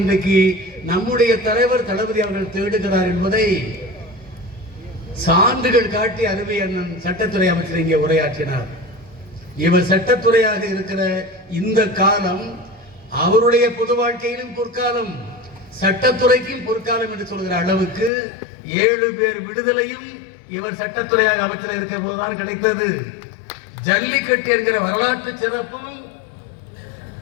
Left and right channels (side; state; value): right; drops out; at 18.1 s